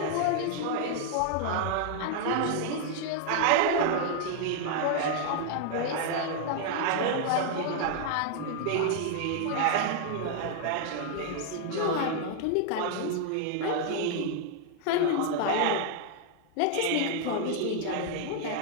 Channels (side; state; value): both; different; correlation 0.00